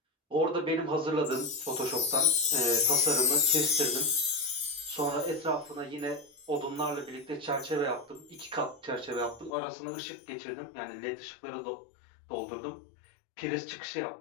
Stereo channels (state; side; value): drops out; right; at 9.5 s